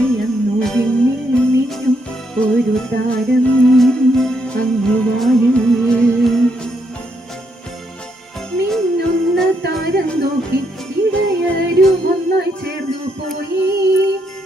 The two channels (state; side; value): normal; both; correlation 0.76